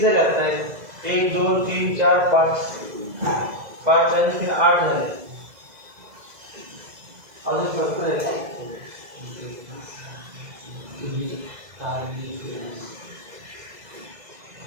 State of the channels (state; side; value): late; left; 2.0 ms